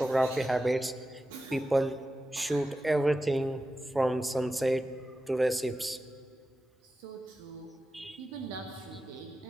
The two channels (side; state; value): both; normal; correlation 0.92